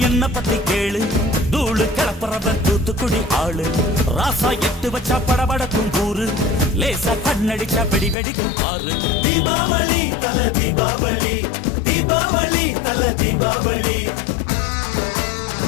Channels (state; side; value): drops out; right; at 8.2 s